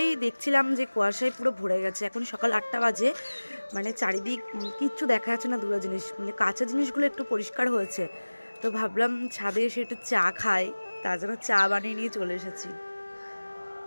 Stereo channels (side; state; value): both; inverted; correlation -1.00